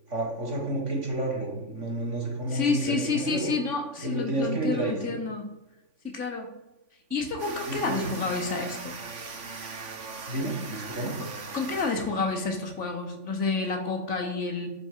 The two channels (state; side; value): late; left; 3.5 ms